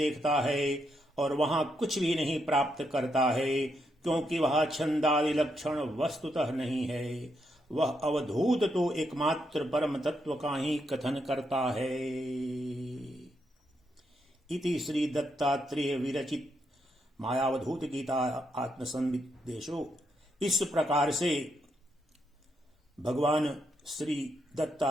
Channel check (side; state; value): both; normal; correlation 0.79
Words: है और वहां कुछ भी नहीं प्राप्त करता है, क्योंकि वह छंदादि लक्षण वस्तुतः नहीं है, वह अवधूत तो एकमात्र परम तत्व का ही कथन करता है। इति श्री दत्तात्रेय विरचित मायावधूत गीता आत्मसंदेशो। इस प्रकार से भगवान श्री